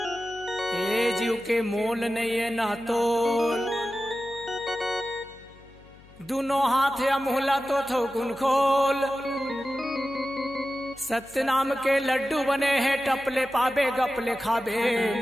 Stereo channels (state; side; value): noise; left; hum, 25 dB below the sound